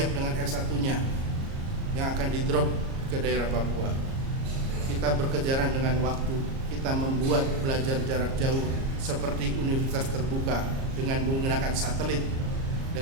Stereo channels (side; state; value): left; late; 37 ms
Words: dengan S1-nya yang akan di-drop ke daerah Papua. Kita berkejaran dengan waktu, kita membuat belajar jarak jauh seperti universitas terbuka dengan menggunakan satelit,